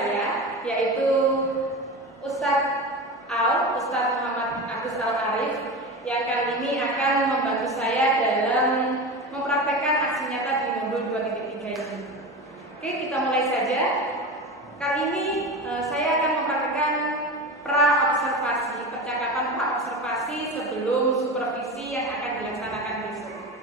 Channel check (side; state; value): both; normal; correlation 0.26